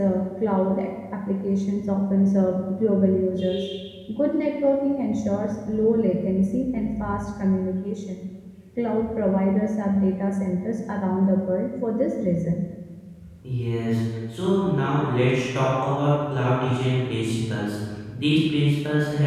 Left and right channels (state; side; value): identical; both; correlation 1.00